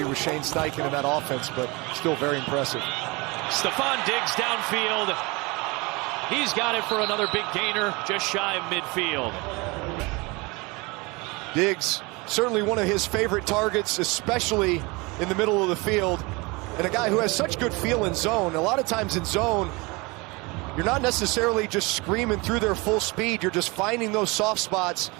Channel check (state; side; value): quieter; left; 25.8 dB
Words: with Shane Steichen in that offense, but still very impressive. Stephon Diggs downfield. He's got it for another big gainer, just shy of midfield. Diggs, certainly one of his favorite targets, especially in the middle of the field. And a guy who has such good feel in zone. A lot of times in zone, you're not necessarily just screaming through their full speed. You're just finding those soft spots.